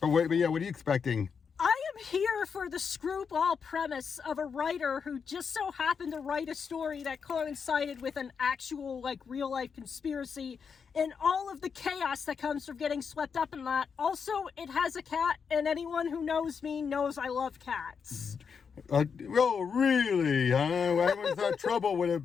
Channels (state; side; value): quieter; right; 6.2 dB